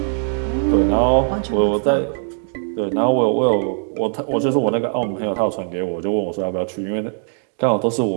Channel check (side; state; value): left; silent; 66 dB below the other